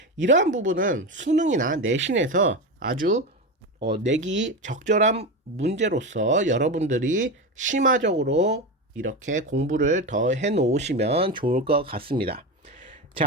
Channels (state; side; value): normal; both; correlation 0.19